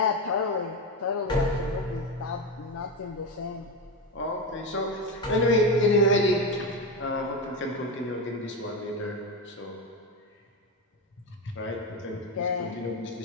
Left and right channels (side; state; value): both; normal; correlation 0.16